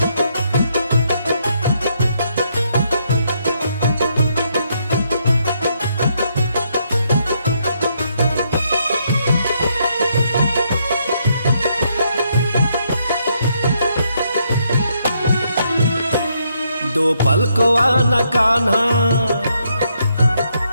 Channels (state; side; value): inverted; both; correlation -0.75